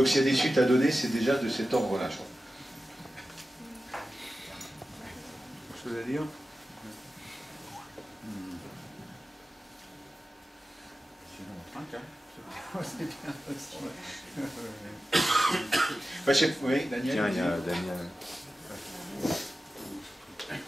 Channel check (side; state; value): both; normal; correlation 0.94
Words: s'il y a des suites à donner, c'est déjà de cet ordre-là, je crois. Quelque chose à dire? C'est bien aussi. Oui, Daniel. Tiens, il y a Daniel.